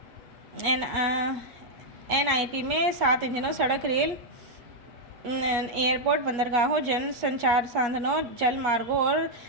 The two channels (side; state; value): left; late; 8.4 ms